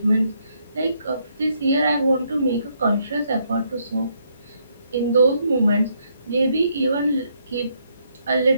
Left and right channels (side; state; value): both; inverted; correlation -0.74